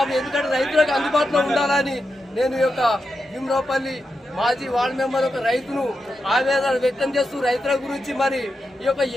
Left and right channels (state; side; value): normal; both; correlation 0.88